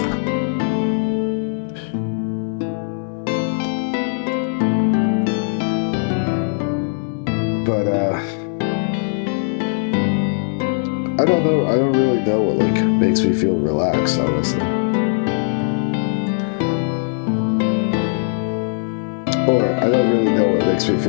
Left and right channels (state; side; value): silent; right; 66 dB below the other